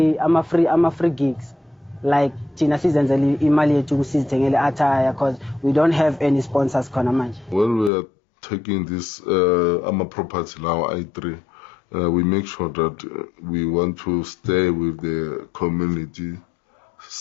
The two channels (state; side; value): drops out; right; at 7.9 s